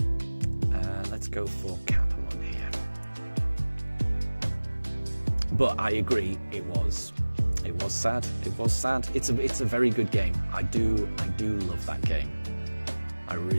Let's go for Capamon here. But I agree, it was sad. It was sad. It's a very good game. I do love that game. I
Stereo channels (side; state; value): both; inverted; correlation -1.00